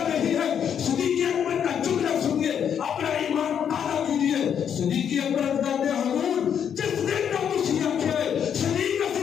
نہیں ہے. صدیق اکبر کا جملہ سنیے, اپنا ایمان تازہ کیجیے. صدیق اکبر کہتے ہیں حضور جس دن کا مسیح ہے صدیق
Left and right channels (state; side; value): quieter; right; 8.4 dB